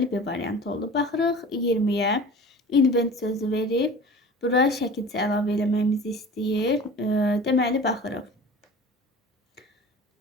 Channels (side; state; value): both; normal; correlation 0.40